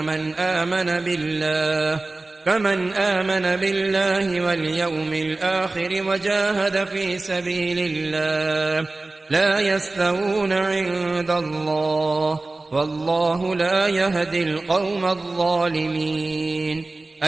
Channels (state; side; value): quieter; left; 3.2 dB